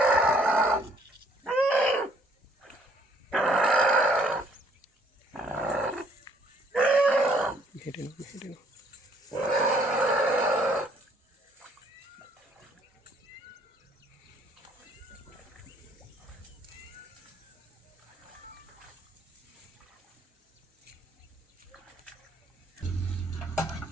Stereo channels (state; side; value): normal; both; correlation 0.64